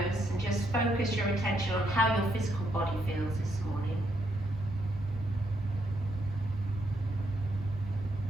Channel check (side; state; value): both; normal; correlation 0.76